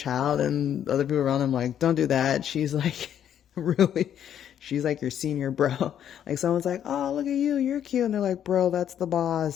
and other people around them like, don't do that. She's like, really, she's like your senior bro. Like someone's like, oh, look at you, you're cute. And they're like, bro, that's the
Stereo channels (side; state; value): right; quieter; 9.8 dB